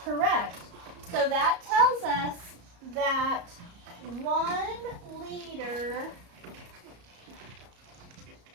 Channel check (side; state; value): left; late; 34 ms